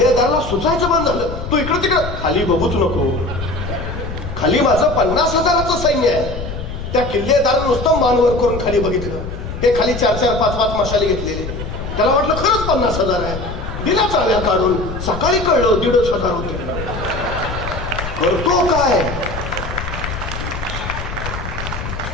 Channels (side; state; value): left; noise; rumble, 7 dB below the sound